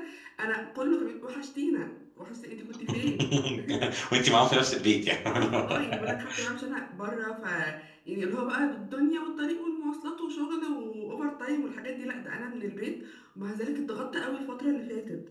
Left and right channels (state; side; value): identical; both; correlation 1.00